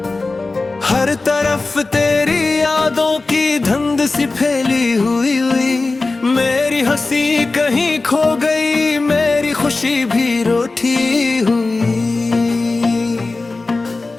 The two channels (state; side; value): quieter; right; 3.5 dB